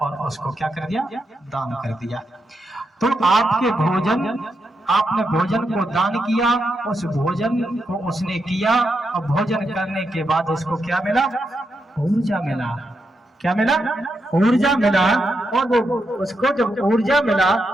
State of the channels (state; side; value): normal; both; correlation 0.84